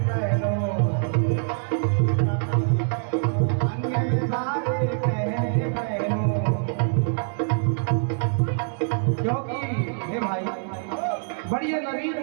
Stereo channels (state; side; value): silent; left; digital silence